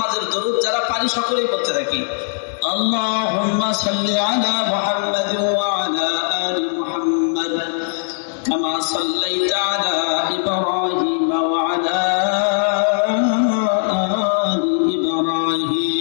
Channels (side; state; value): right; silent; digital silence